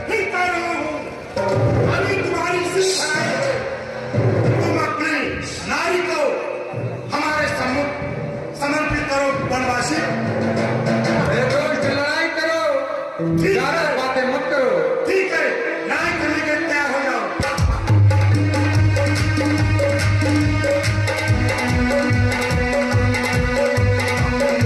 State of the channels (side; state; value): both; identical; correlation 1.00